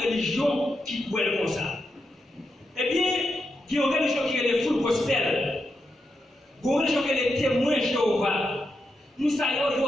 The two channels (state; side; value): normal; both; correlation 0.85